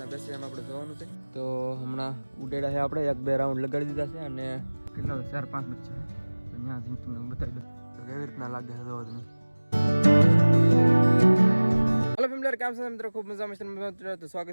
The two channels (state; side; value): inverted; both; correlation -1.00